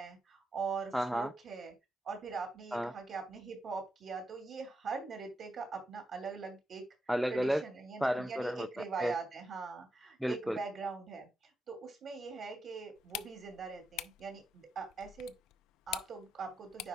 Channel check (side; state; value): both; normal; correlation 0.85